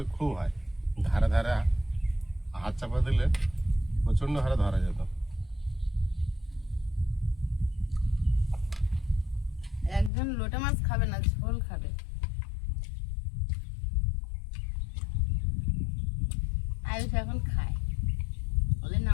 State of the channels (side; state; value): right; drops out; at 10.1 s